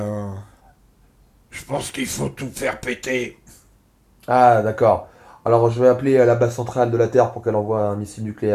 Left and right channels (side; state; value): both; identical; correlation 1.00